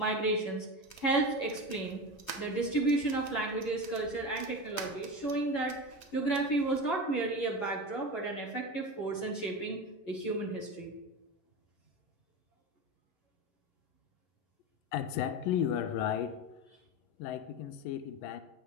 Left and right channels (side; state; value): right; late; 11 ms